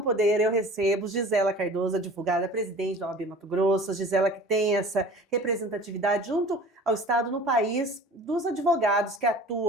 Poder eu recebo Gisela Cardoso, advogada, presidente da OAB Mato Grosso. Gisela que tem essa representatividade junto ao Estado no país dos advogados que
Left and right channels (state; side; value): normal; both; correlation 0.43